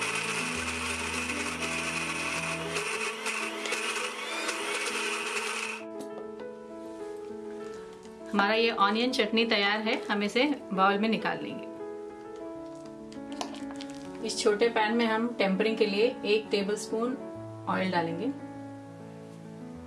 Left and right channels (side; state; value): both; identical; correlation 1.00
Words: हमारा ये ऑनियन चटनी तैयार है, हम इसे बाउल में निकाल लेंगे। इस छोटे पैन में हम टेम्परिंग के लिए 1 टेबलस्पून ऑयल डालेंगे।